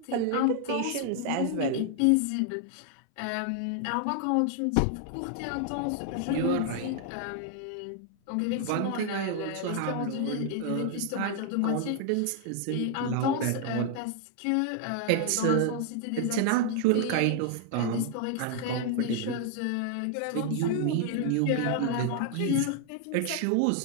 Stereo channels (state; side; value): different; both; correlation 0.00